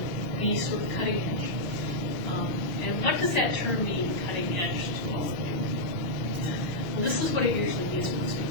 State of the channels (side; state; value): right; late; 5.4 ms